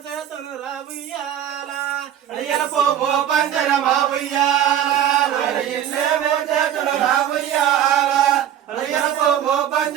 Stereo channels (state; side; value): quieter; left; 10.4 dB